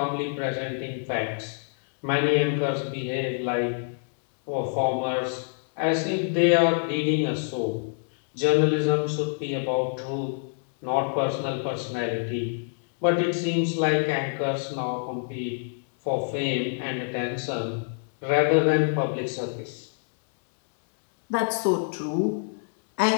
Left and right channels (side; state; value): right; silent; 60 dB below the other